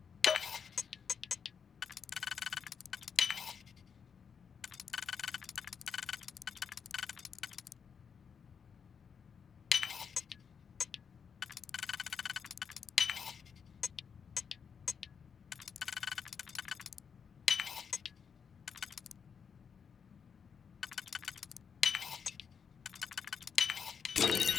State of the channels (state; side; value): quieter; right; 6.7 dB